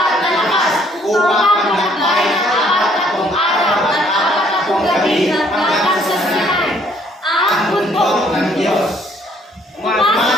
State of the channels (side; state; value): both; normal; correlation 0.63